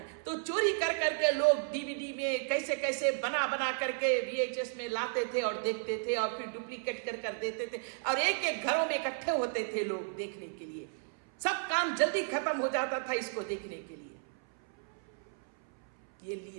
तो चोरी कर करके लोग डीवीडी में कैसे कैसे बना बना करके VHS में लाते थे और देखते थे, और फिर डुप्लीकेट कर कर देते थे, और एक एक घरों में इकट्ठे होते थे लोग देखने के लिए। सब काम जल्दी खत्म हो जाता था इसको देखने के लिए। ये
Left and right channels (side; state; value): left; silent; 55 dB below the other